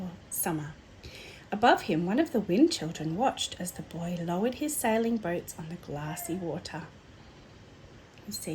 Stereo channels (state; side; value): identical; both; correlation 1.00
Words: summer. Above him, one of the Wind Children watched as the boy lowered his sailing boats on the glassy water. You